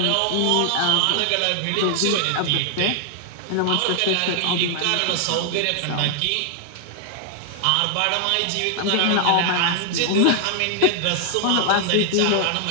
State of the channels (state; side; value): different; both; correlation 0.00